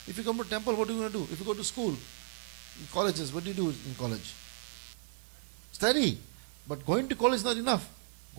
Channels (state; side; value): silent; left; digital silence